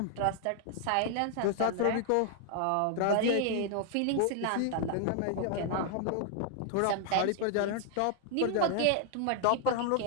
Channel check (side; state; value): both; different; correlation 0.00